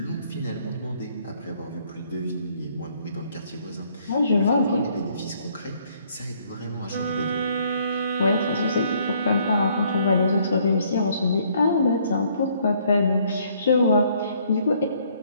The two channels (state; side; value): inverted; both; correlation -0.65